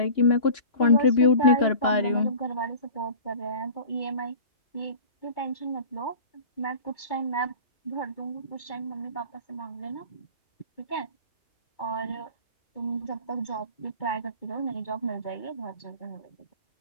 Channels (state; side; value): late; right; 2.2 ms